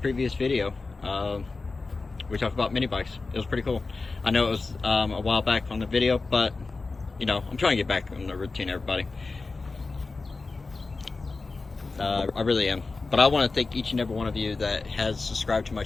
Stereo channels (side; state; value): right; quieter; 3.8 dB